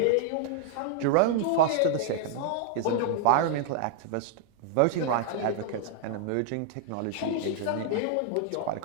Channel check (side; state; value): both; different; correlation -0.01